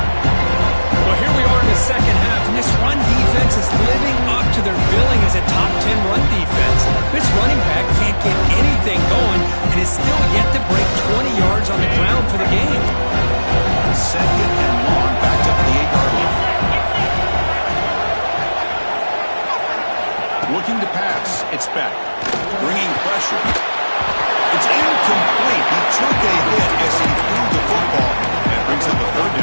Well, here we are in the second half, and this run defense is living up to their billing as a top 10 run defense. This running back can't get anything going and is still yet to break 20 yards on the ground for the game. Second and long, backed up to the 8-yard line. Looking to pass. It's Beck. Bringing pressure. It's incomplete. He took a hit as he threw the football and brings up the 3rd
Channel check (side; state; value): both; inverted; correlation -1.00